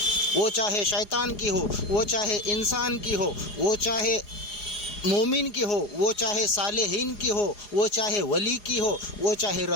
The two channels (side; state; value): right; late; 4.8 ms